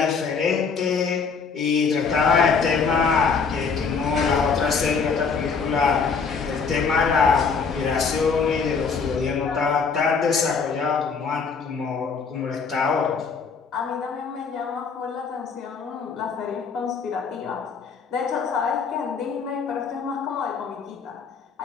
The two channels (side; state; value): right; quieter; 5.4 dB